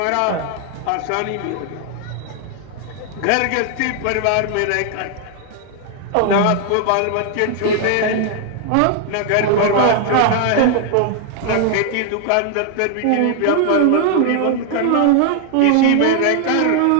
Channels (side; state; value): both; different; correlation 0.00